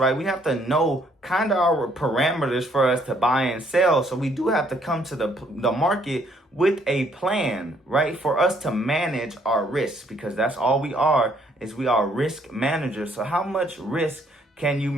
We have to know kind of our parameters for us to buy and sell. So we do have to come to the market with a plan, right? For us to manage our risks, because that's all we are, we are risk managers. So how much risk can you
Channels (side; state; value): both; normal; correlation 0.66